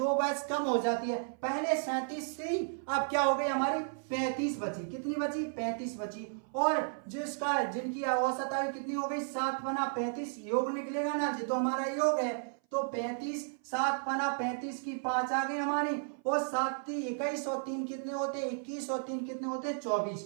वर्ष कम हो जाती है, पहले 37 थी, अब क्या हो गई हमारी 35 बची, कितनी बची 35 बची। और जिनकी औसत आयु कितनी हो गई 7 बना 35, योग निकलेगा ना जी, तो हमारा योग है तो 35, 7 बना 35 की 5 आ गई हमारी, और 7 3 21 और 3 कितने होते 21 और 3 कितने होते 24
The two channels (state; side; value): silent; left; 55 dB below the other